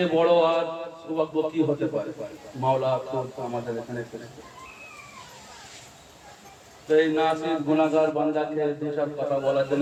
বড় আর সৌভাগ্য কি হতে পারে? মাওলা খোদ আমাদের এখানে এসেছে। তো এই নাসির গুনাহগার বান্দাকে দুসব কথা বলার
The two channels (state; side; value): identical; both; correlation 1.00